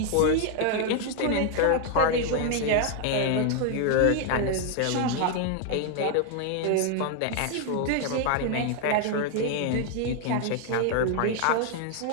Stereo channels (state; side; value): different; both; correlation 0.00